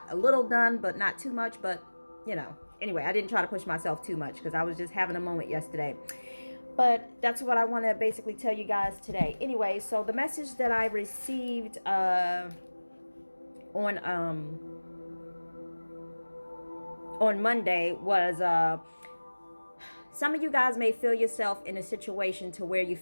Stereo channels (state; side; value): inverted; both; correlation -1.00